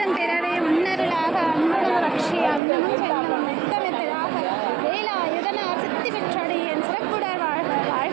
பிறரே உன்னருளாக அன்புடன் ரட்சி அன்னமும் செல்லும் மெத்தமெத்ததாக வேலாயுதனார் சித்தி பெற்றடியேன் சிறப்புடர் வாழ்க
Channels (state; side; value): drops out; left; at 2.6 s